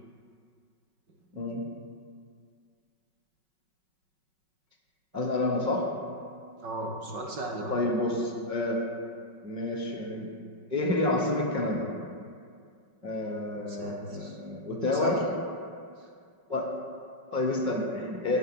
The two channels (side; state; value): left; late; 5.4 ms